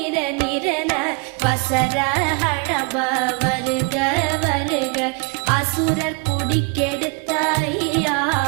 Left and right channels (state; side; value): quieter; left; 32.7 dB